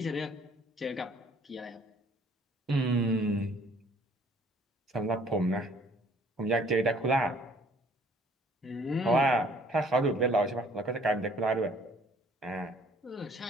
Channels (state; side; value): normal; both; correlation 0.58